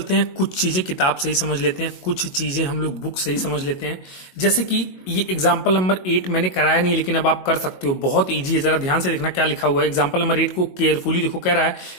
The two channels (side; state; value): right; late; 22 ms